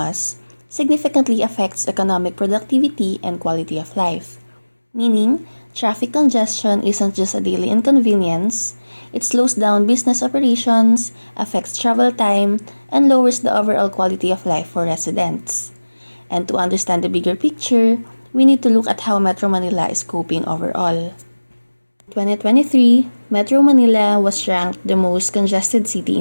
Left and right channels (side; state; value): both; inverted; correlation -1.00